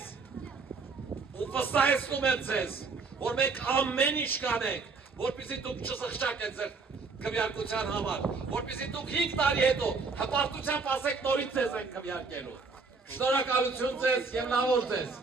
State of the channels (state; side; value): quieter; left; 4.4 dB